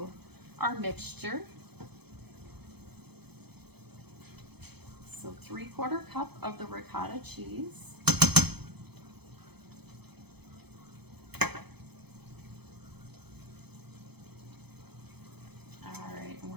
our mixture. So 3/4 cup of the ricotta cheese.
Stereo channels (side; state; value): left; late; 0.98 ms